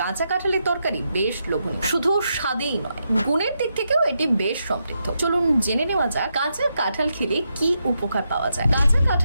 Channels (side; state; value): both; inverted; correlation -0.83